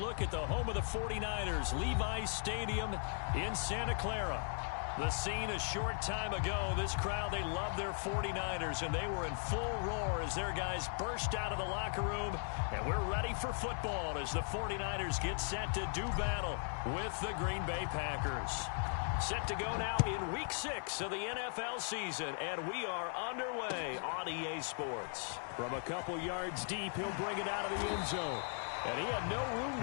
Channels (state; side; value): silent; right; 52 dB below the other